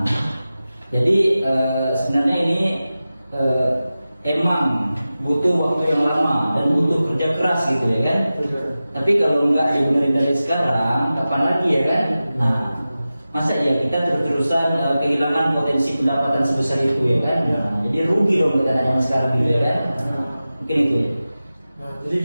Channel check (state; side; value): inverted; both; correlation -0.95